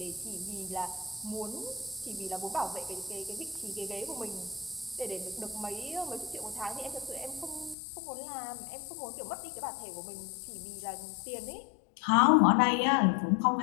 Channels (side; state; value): right; drops out; at 7.8 s